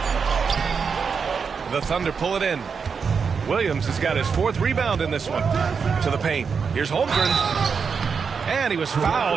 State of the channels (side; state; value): left; quieter; 5.8 dB